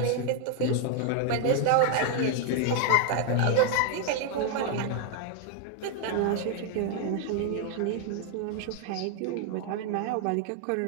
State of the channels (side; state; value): both; different; correlation 0.00